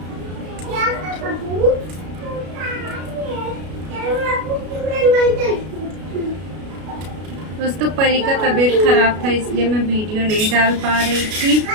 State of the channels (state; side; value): late; left; 33 ms